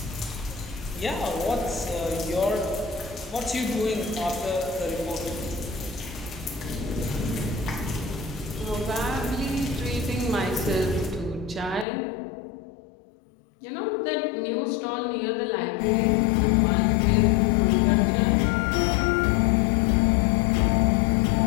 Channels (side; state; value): right; drops out; at 11.9 s